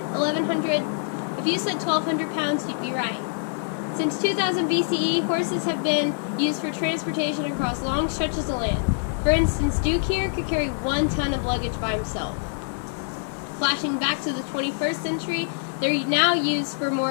If you said 1,200 pounds, you'd be right. Since 2000 BCE, horses have been used for transportation across long stretches of land. For instance, Duke here could carry 1 ton of luggage by himself. Flashing back to the 21st century, they're now used for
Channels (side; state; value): right; silent; digital silence